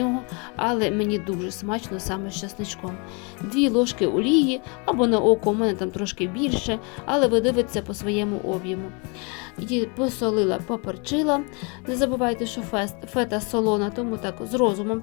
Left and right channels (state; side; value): quieter; right; 32.6 dB